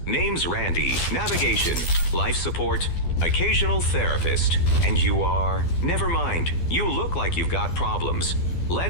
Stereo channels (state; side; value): late; right; 12 ms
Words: Name's Randy. Navigation, life support, occasional therapist. And you are? Never mind. You look like you've got problems.